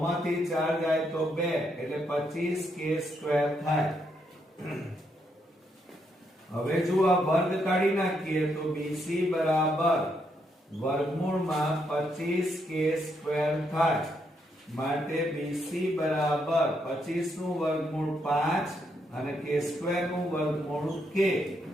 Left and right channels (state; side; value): normal; both; correlation 0.77